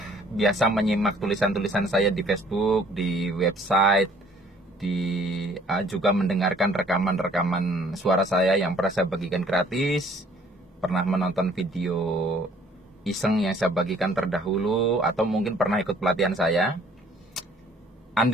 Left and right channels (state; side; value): normal; both; correlation 0.58